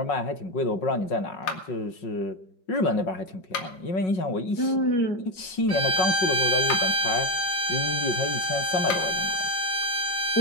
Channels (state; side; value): late; right; 5.4 ms